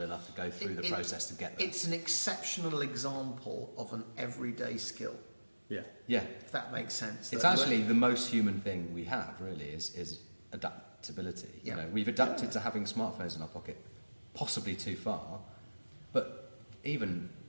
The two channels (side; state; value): both; inverted; correlation -1.00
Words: enough to go through the process to get there. It's an exceptional example of an everyday skill. Yeah. If that makes sense. It's actually the most human thing we have, really, is adaptability. Yeah. We've adapted to having smartphones in our pocket, possibly too far, but even